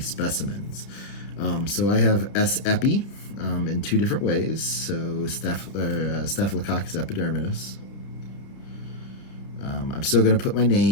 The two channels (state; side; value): late; right; 30 ms